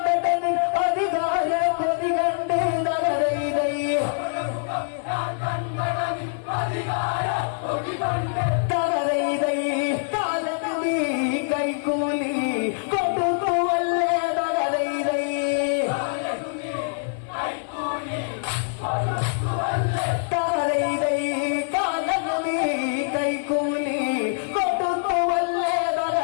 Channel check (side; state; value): right; silent; 55 dB below the other